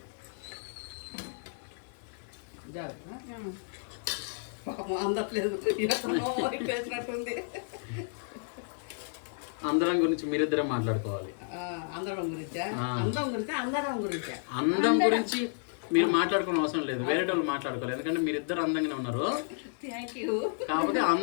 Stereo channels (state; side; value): silent; right; digital silence